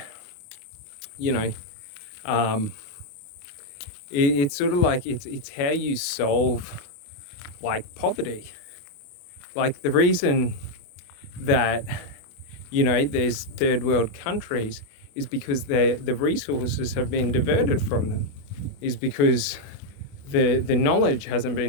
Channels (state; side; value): late; right; 28 ms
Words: you know, it's sort of like it's how you solve like poverty. Like the reason that, you know, there's third world countries is because the resources have been diverted from them, is because the knowledge hasn't